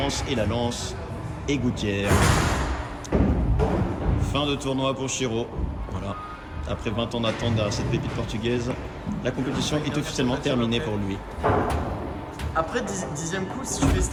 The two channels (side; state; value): both; identical; correlation 1.00